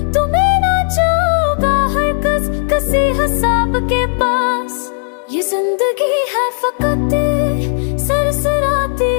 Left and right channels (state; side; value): silent; right; 65 dB below the other